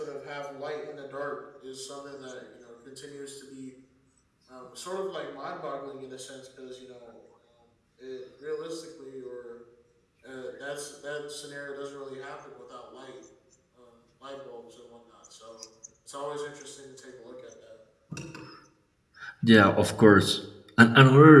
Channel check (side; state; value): both; identical; correlation 1.00